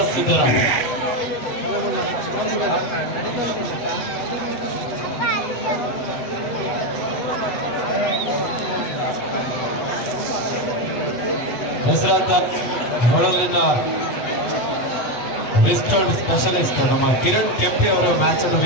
ಸಿದ್ಧರಾಗಿ. ಹೆಸರಾಂತ ಹೊಳಲಿನ ರಿಸ್ಟರ್ಡ್ ಸ್ಪೆಷಲಿಸ್ಟ್ ನಮ್ಮ ಕಿರಣ್ ಕೆಂಪಿ ಅವರು ಮ್ಯಾಚ್ ಅನ್ನು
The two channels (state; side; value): late; right; 8.2 ms